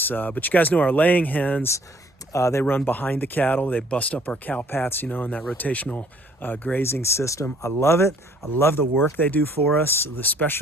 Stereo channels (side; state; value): both; normal; correlation 0.60